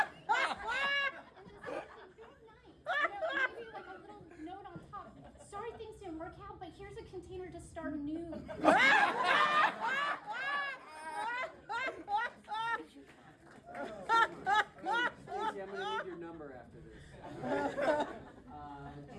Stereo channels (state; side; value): identical; both; correlation 1.00